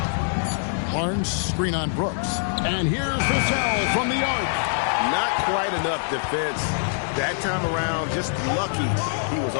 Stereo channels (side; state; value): right; silent; 63 dB below the other